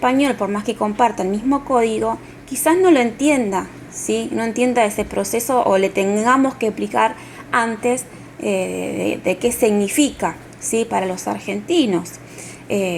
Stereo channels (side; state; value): both; identical; correlation 1.00